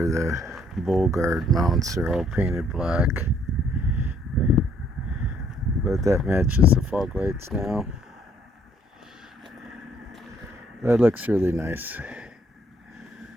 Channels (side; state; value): both; normal; correlation 0.64